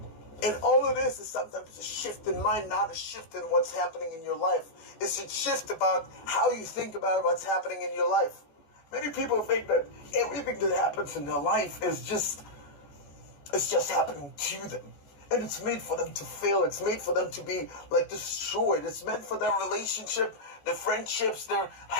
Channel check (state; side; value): late; right; 14 ms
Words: And all it is sometimes a shift in mind, not a shift in what's happening in your life. It's a shift about how you think about what's happening in your life. Many people think that everything that happens in their life is just happening to them. And it's made for them to fail. It's made for them to be destroyed. It's meant for their relationship, their friendships, their